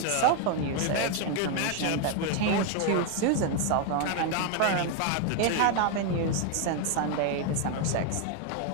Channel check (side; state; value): both; different; correlation 0.01